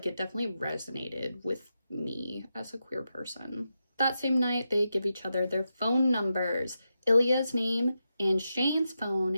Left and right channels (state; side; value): inverted; both; correlation -0.88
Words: it definitely resonated with me as a queer person. That same night, they give each other their phone numbers. Ilya's name and Shane's